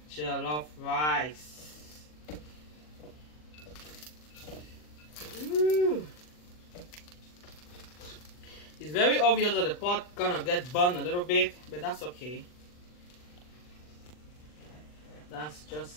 jollof rice. Ooh. It's very obvious that the pot gonna get burned a little bit, but that's okay. That's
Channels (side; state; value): right; late; 40 ms